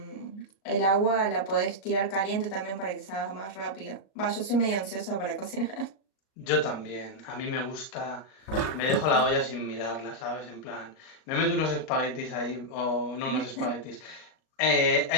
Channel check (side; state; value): right; late; 38 ms